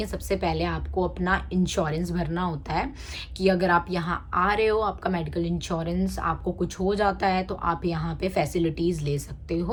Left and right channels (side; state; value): both; identical; correlation 1.00